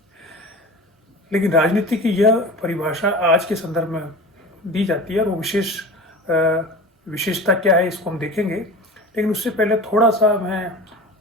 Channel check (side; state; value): both; normal; correlation 0.35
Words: लेकिन राजनीति की यह परिभाषा आज के संदर्भ में दी जाती है और वो विशेषता क्या है इसको हम देखेंगे। लेकिन उससे पहले थोड़ा सा मैं